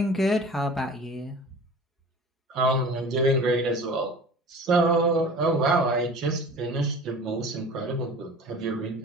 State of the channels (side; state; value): both; normal; correlation 0.41